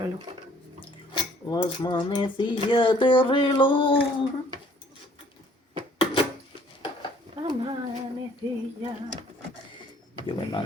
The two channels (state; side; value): normal; both; correlation 0.58